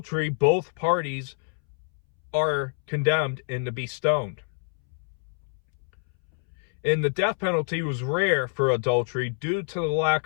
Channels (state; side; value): silent; right; 61 dB below the other